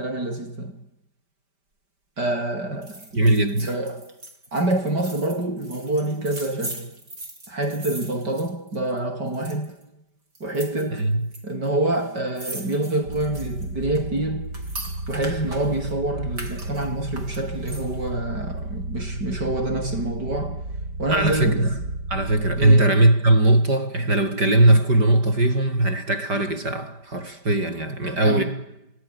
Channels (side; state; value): left; late; 5.1 ms